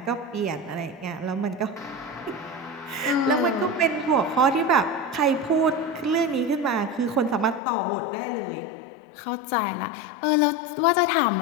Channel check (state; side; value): drops out; right; at 7.6 s